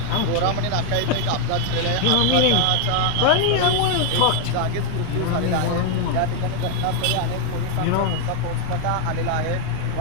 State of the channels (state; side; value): different; both; correlation 0.00